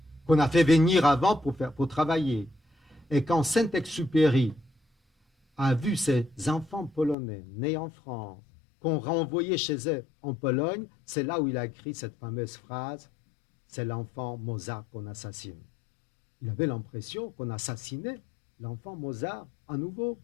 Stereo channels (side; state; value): right; drops out; at 7.2 s